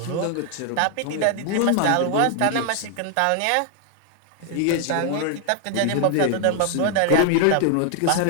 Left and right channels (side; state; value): both; different; correlation 0.00